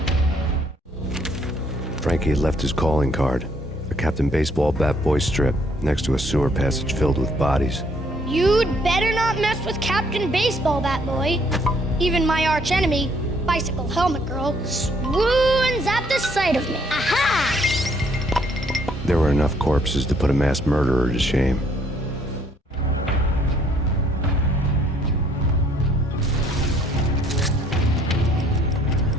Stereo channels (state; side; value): normal; both; correlation 0.65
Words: Frankie had left his calling card. A Captain Baseball bat boy strip next to a sewer passage filled with bodies. You'd better not mess with Captain Baseball Bat Boy. Even my archenemy, Bicycle Helmet Girl, swoons at the sight of me. Aha! There were enough corpses to put a mass murderer to shame.